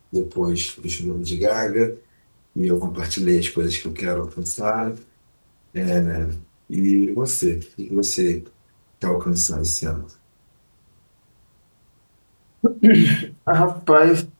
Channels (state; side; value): inverted; both; correlation -1.00